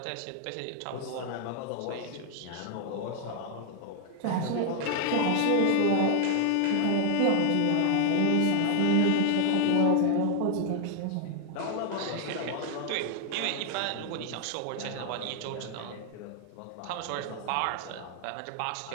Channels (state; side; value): different; both; correlation 0.00